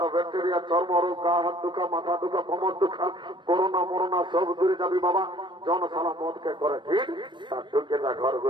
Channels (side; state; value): left; late; 0.22 ms